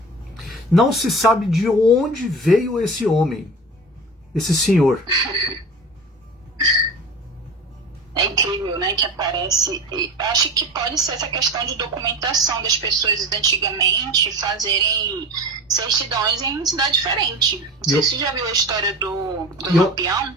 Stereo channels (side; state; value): both; normal; correlation 0.32